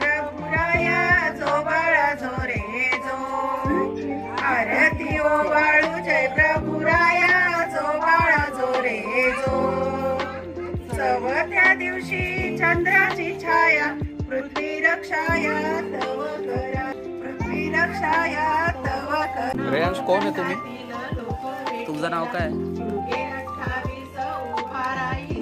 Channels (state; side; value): identical; both; correlation 1.00